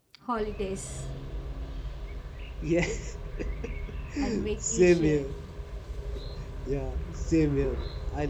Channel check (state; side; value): identical; both; correlation 1.00